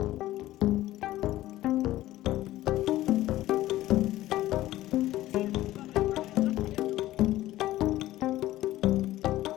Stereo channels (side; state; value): right; quieter; 15.4 dB